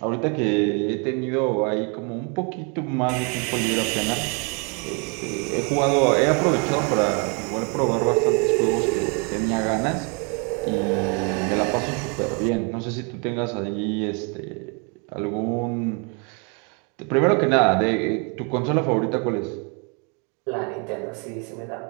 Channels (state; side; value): quieter; left; 35.3 dB